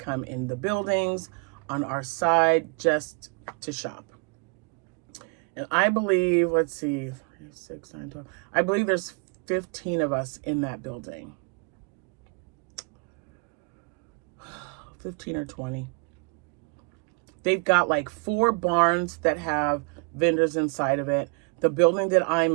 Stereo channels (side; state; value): left; quieter; 33.7 dB